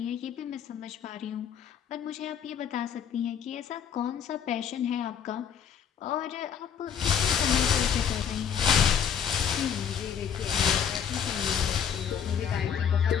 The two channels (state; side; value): quieter; right; 8.0 dB